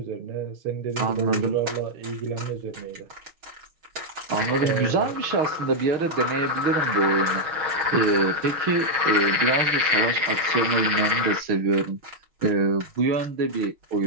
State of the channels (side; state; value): left; late; 6.2 ms